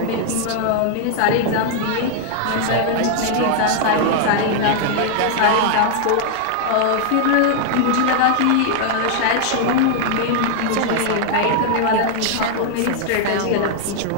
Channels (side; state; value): both; different; correlation 0.00